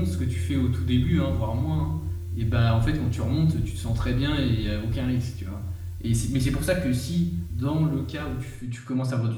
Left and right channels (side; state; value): both; identical; correlation 1.00